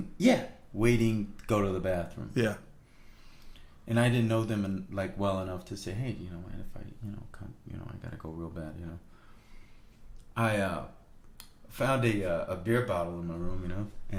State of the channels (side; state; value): both; identical; correlation 1.00